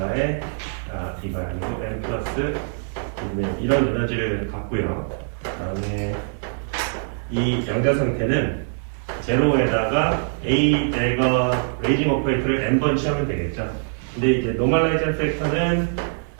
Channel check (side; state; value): left; silent; 63 dB below the other